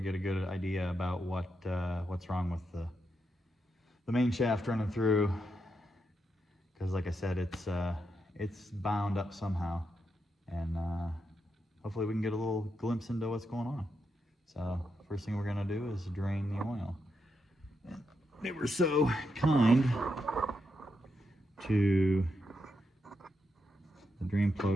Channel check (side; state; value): both; normal; correlation 0.84